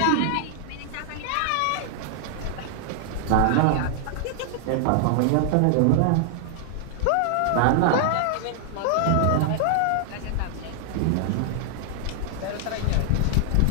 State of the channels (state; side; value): different; both; correlation 0.00